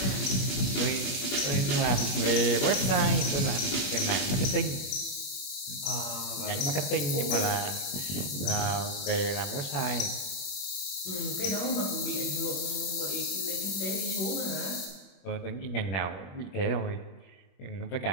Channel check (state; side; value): late; right; 21 ms